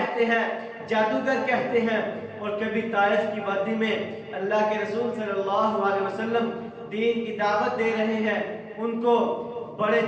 ہیں، جادوگر کہتے ہیں، اور کبھی طائف کی وادی میں اللہ کے رسول صلی اللہ علیہ وسلم دین کی دعوت دے رہے ہیں۔ ان کو بڑے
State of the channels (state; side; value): identical; both; correlation 1.00